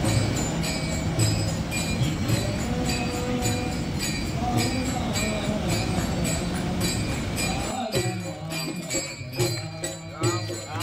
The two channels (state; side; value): identical; both; correlation 1.00